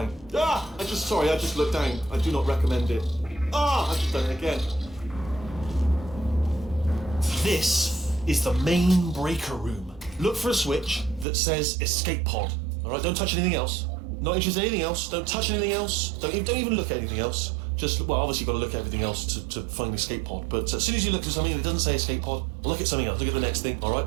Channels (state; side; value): drops out; left; at 11.2 s